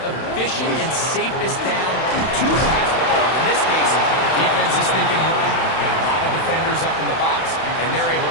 and safest down to pass the ball. In this case, defense is thinking run, got a lot of defenders up in the box, and they're able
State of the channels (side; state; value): right; late; 31 ms